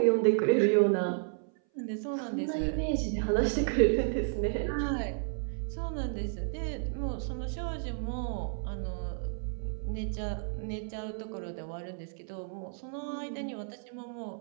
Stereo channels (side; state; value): left; silent; 56 dB below the other